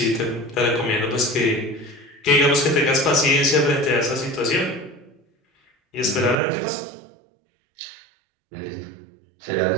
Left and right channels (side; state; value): left; drops out; at 6.4 s